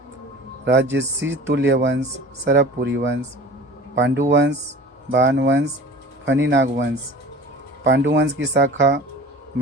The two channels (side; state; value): both; normal; correlation 0.41